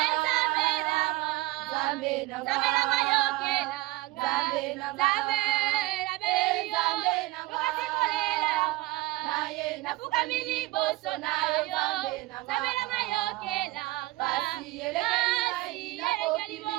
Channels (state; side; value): quieter; left; 19.0 dB